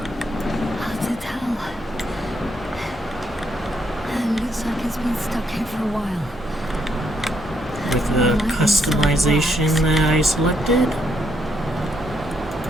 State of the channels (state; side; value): normal; both; correlation 0.75